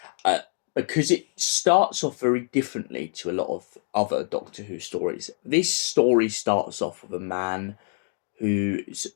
because it starts off very differently to a lot of other Doctor Who stories. This story starts off with a man whose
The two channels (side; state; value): right; silent; digital silence